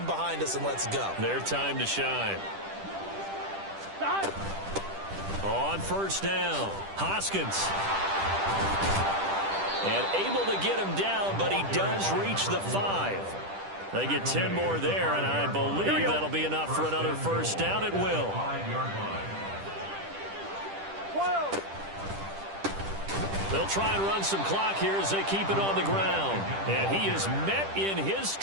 behind us and let's go. Their time to shine. On first down, Hoskins. And able to get him down, but he does reach the 5. They get 10 more there, and I believe that'll be enough for another first down. It will. 12. They'll try and run some clock here as they keep it on the ground. And he is met in his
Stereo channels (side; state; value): left; late; 10 ms